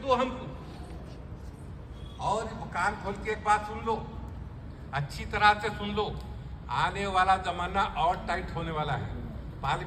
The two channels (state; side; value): identical; both; correlation 1.00